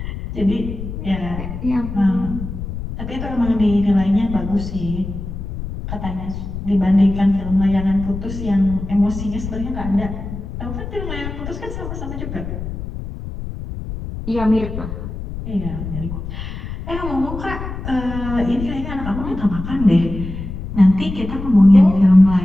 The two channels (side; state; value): left; noise; rumble, 7 dB below the sound